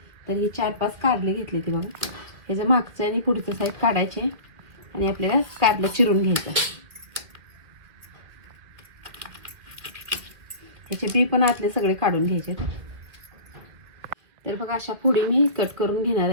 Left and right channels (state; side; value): late; left; 2.2 ms